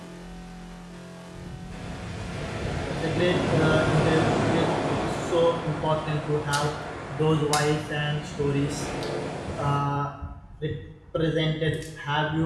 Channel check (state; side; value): identical; both; correlation 1.00